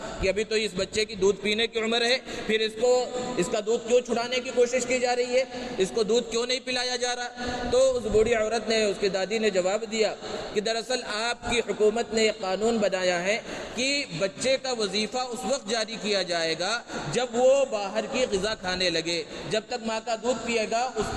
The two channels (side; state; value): both; identical; correlation 1.00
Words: کہ ابھی تو اس بچے کی دودھ پینے کی عمر ہے، پھر اس کا دودھ کیوں چھڑانے کی کوشش کی جا رہی ہے؟ اس کو دودھ کیوں نہیں پلایا جا رہا؟ تو اس بوڑھی عورت نے، اس کی دادی نے جواب دیا کہ دراصل آپ کی حکومت نے یہ قانون بنایا ہے کہ بچے کا وظیفہ اس وقت جاری کیا جائے جائے گا جب وہ باہر کی غذا کھانے لگے. جب تک ماں کا دودھ پیے گا